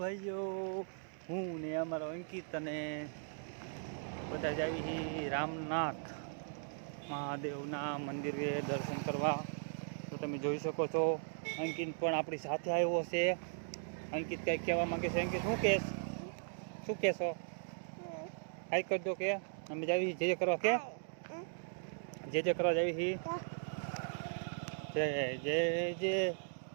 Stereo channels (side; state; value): left; silent; digital silence